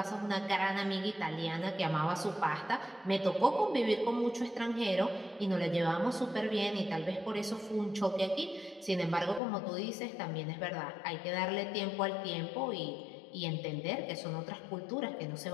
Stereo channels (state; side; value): drops out; right; at 9.4 s